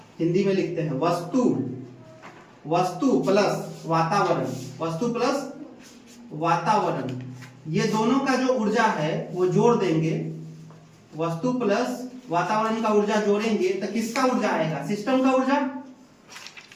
हिंदी में लिखते हैं वस्तु, वस्तु प्लस वातावरण, वस्तु प्लस वातावरण, ये दोनों का जो ऊर्जा है वो जोड़ देंगे, वस्तु प्लस वातावरण का ऊर्जा जोड़ेंगे तो किसका ऊर्जा आएगा, सिस्टम का ऊर्जा,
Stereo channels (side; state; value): both; identical; correlation 1.00